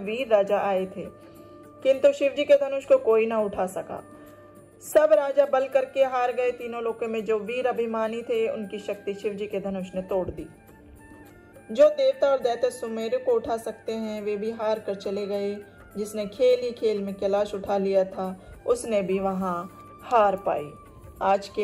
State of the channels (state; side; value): identical; both; correlation 1.00